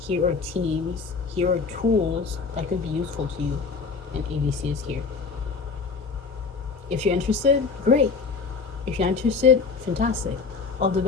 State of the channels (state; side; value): quieter; right; 4.8 dB